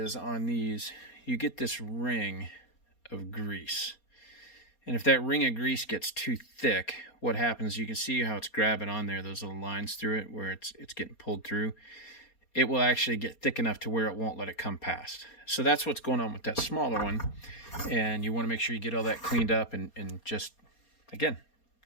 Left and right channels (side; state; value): right; late; 4.3 ms